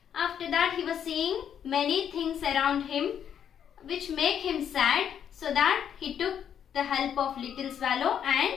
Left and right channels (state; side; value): quieter; right; 8.8 dB